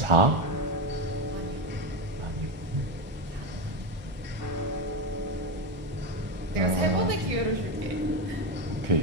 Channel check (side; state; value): left; late; 1.5 ms